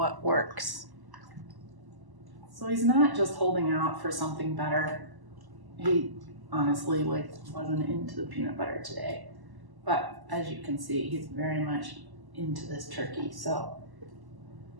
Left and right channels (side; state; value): left; late; 1.1 ms